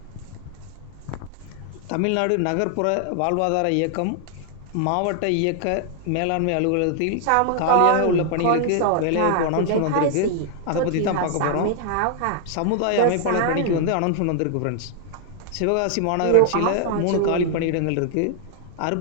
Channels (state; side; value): different; both; correlation 0.00